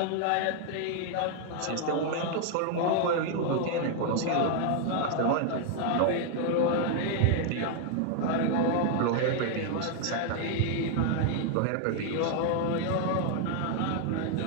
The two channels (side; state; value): both; different; correlation 0.00